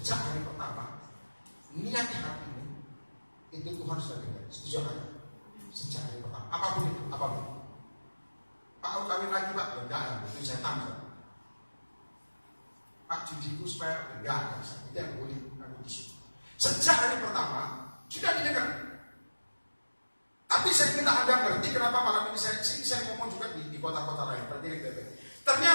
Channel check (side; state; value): both; inverted; correlation -1.00